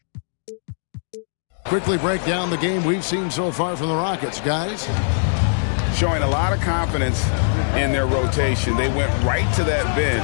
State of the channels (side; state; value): right; silent; digital silence